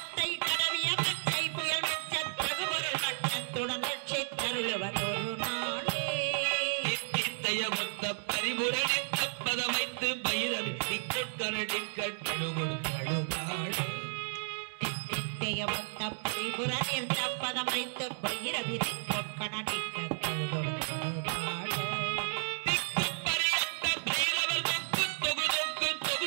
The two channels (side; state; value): left; silent; digital silence